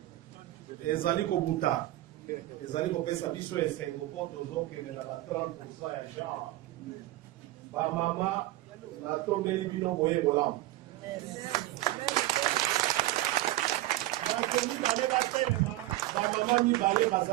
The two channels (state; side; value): quieter; left; 16.6 dB